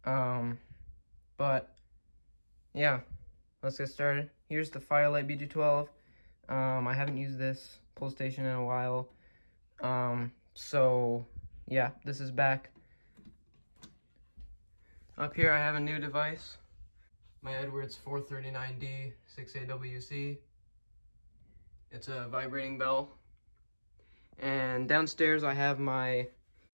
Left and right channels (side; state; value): both; inverted; correlation -1.00